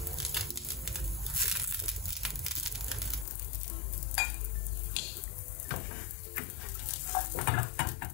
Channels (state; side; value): drops out; right; at 3.2 s